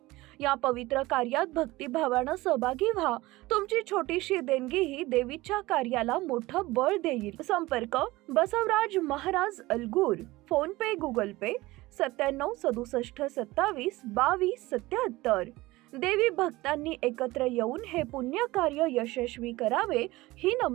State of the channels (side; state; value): left; quieter; 19.6 dB